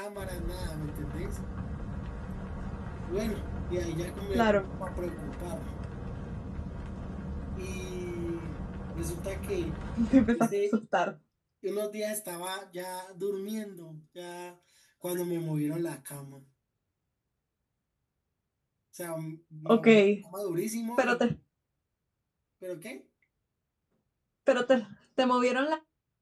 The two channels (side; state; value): both; identical; correlation 1.00